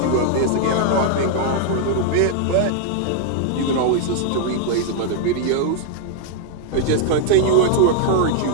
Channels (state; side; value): different; both; correlation 0.00